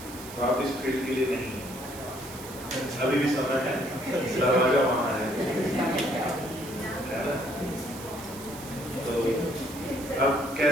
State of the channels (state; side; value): noise; right; hiss, 15 dB below the sound